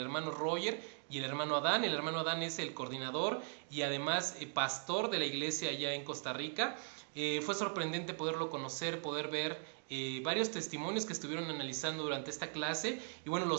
Roger y el hermano Adán. El hermano Adán es el coordinador y además pastor de la iglesia allá en Costa Rica. Fue sorprendente poderlo conocer, poder ver varios testimonios que estuvieron analizando durante esta clase. Y bueno, lo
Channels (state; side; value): silent; left; 52 dB below the other